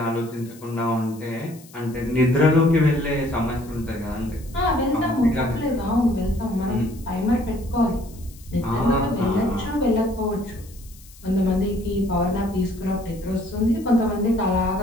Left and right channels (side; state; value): left; noise; hiss, 23 dB below the sound